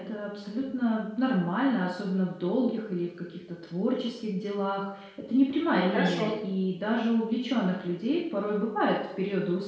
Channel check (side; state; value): both; identical; correlation 1.00